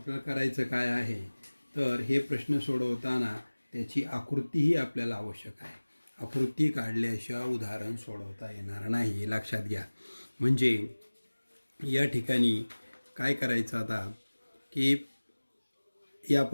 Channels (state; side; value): inverted; both; correlation -1.00